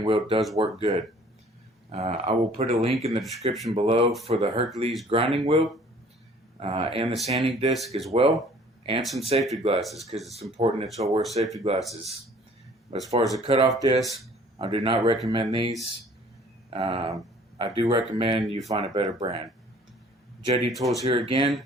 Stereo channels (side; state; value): both; normal; correlation 0.53